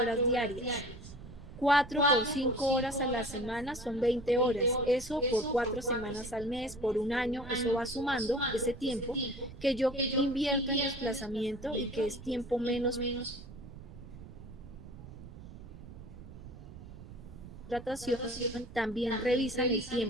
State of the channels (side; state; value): right; noise; rumble, 15 dB below the sound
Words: diarias. 4 por 5 horas a la semana son 20 horas. Eso por 4 semanas al mes, por un año, eso va sumando ese tiempo que yo invierto en desplazamiento y que es tiempo menos contratación, también revisan el